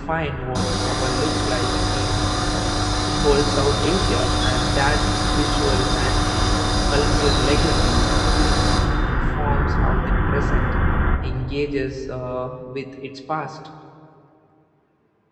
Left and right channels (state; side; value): identical; both; correlation 1.00